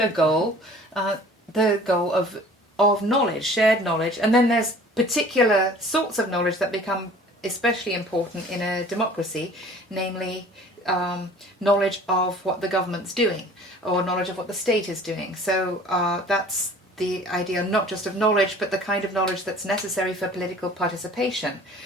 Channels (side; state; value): both; normal; correlation 0.48